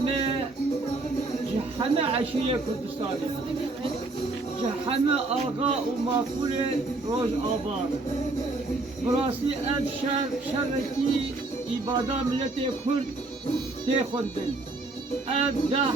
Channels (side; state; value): left; quieter; 3.2 dB